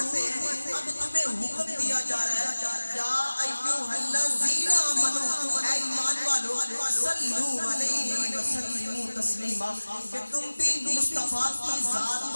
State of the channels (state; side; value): inverted; both; correlation -1.00